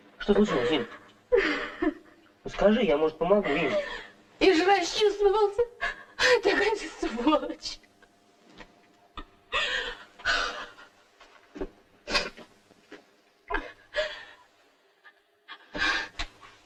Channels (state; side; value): identical; both; correlation 1.00